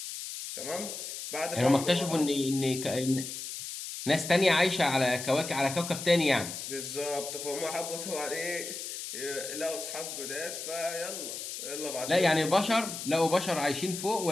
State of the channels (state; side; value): noise; left; hiss, 7 dB below the sound